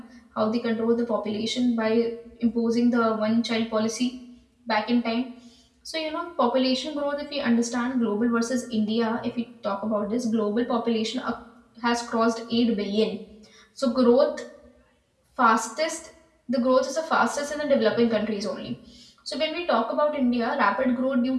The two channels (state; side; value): identical; both; correlation 1.00